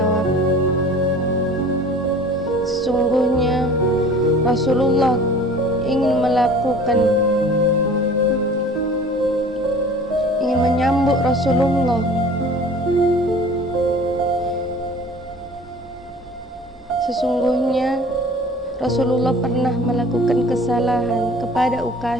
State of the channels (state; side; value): normal; both; correlation 0.46